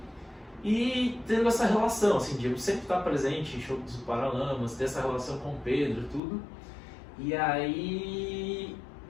E tendo essa relação, assim, de eu sempre estar presente em shows dos Paralamas, ter essa relação com o Pedro, tudo. E aí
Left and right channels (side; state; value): right; drops out; at 6.2 s